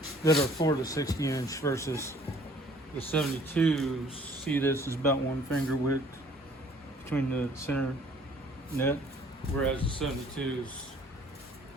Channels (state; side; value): normal; both; correlation 0.56